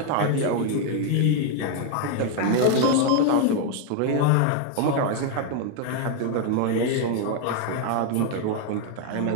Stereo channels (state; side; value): different; both; correlation 0.00